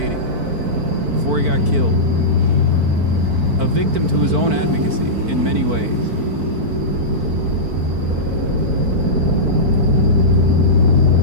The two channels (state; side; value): late; left; 4.5 ms